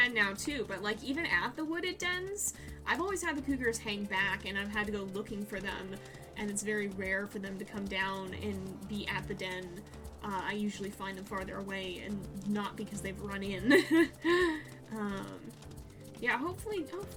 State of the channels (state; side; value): identical; both; correlation 1.00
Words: now, too, but, like, even at the wooded dens, I've always had the cougars hang back, and I've had to go looking for them, and it's very rare for them to come down and be at the den. I usually find them farther away, and not because they've run in. Yeah, hopefully